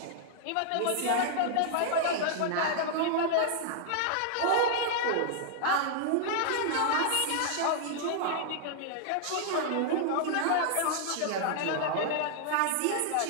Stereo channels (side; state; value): both; different; correlation -0.01